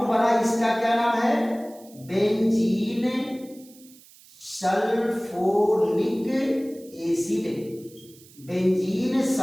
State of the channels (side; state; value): right; noise; hiss, 24 dB below the sound